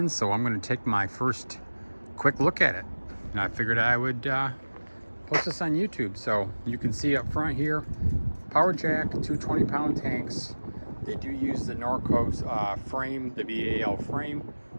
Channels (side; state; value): both; inverted; correlation -1.00